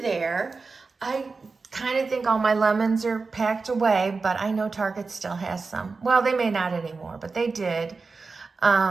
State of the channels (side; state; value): left; quieter; 4.3 dB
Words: there, I kind of think all my lemons are packed away, but I know Target still has some. Well, they may not anymore, but they did.